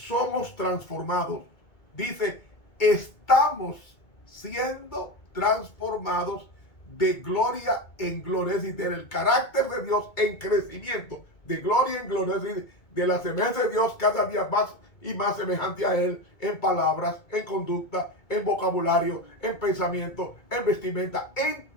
transformados, dice estamos siendo transformados de gloria en gloria, es decir, del carácter de Dios en crecimiento, de gloria en gloria, es decir, de la semejanza de Dios cada día más y más semejante a Él, en palabras, en conducta, en vocabulario, en pensamiento, en vestimenta, en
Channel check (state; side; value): late; right; 2.2 ms